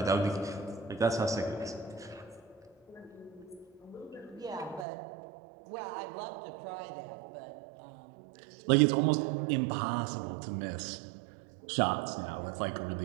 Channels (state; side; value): drops out; left; at 4.9 s